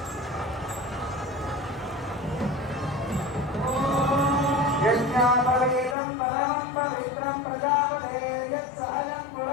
యజ్ఞాపవీతం పరమం పవిత్రం ప్రజాపతే యత్సహజం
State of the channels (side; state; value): right; drops out; at 6.0 s